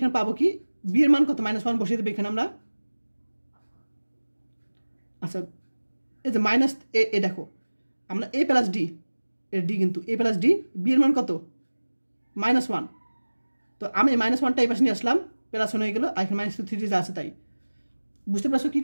পাবো কি b এর মান কত -1 বসিয়ে দেব এখানে আমরা। আচ্ছা এই যে মাইনাস এ দেখো আমরা a প্লাস d এর d কিন্তু a প্লাস d b এর মান কত -1, তো আমি -1টা এই পাশে নিয়ে আসলাম প্লাস 1 হয়ে গেল আর এখানে -3 যা আছে তাই। বুঝতে পারছো কি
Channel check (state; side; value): inverted; both; correlation -1.00